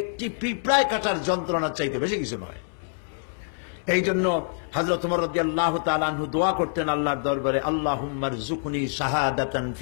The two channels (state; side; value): silent; right; 61 dB below the other